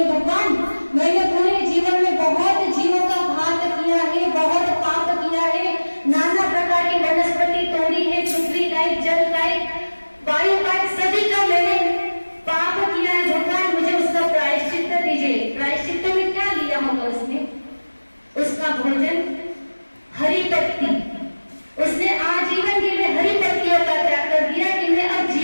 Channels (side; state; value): both; inverted; correlation -1.00